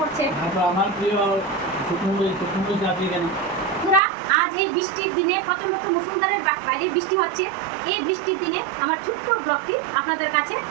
তারপর আমার প্রিয় শুকনো চাকরি কেন। বন্ধুরা, আজ এই বৃষ্টির দিনে প্রচন্ড মুষলধারে বাইরে বৃষ্টি হচ্ছে, এই বৃষ্টির দিনে আমার ছোট্ট ব্লগটি আপনাদের কাছে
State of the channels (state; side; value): drops out; left; at 4.0 s